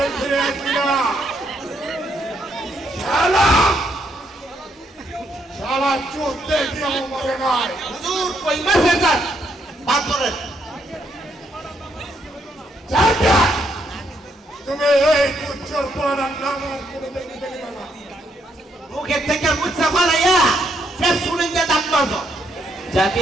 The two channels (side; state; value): both; normal; correlation 0.75